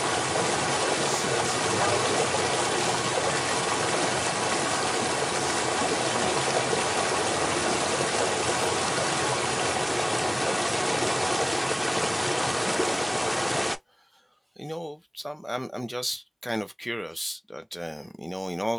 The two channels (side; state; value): both; identical; correlation 1.00